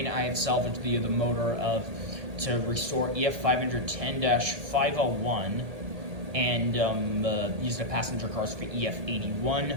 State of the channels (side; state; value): left; late; 1.8 ms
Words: I had salvaged via the motor to restore EF510-501 and use the passenger cars for